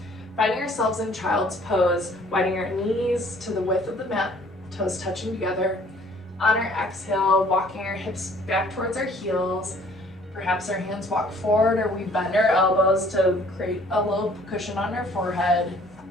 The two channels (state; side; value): normal; both; correlation 0.57